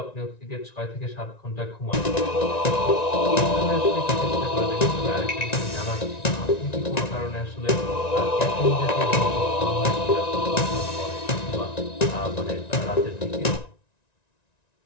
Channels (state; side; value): late; right; 1.9 ms